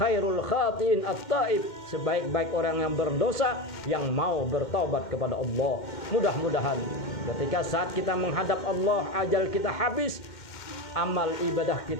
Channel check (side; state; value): right; late; 2.1 ms